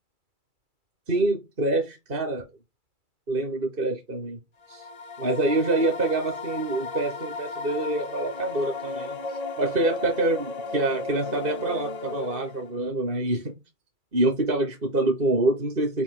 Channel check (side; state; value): left; late; 2.3 ms